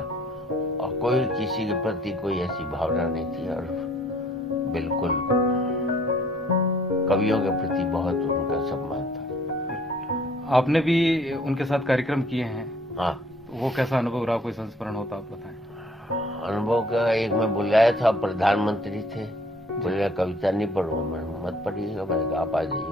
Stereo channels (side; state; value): both; normal; correlation 0.58